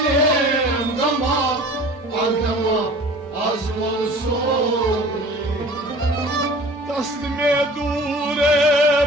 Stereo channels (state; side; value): normal; both; correlation 0.45